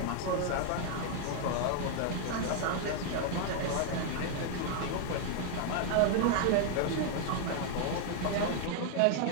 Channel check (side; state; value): both; different; correlation 0.00